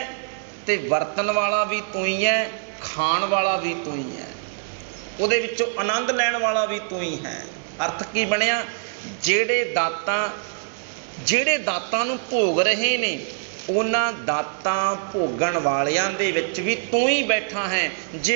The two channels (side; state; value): left; silent; digital silence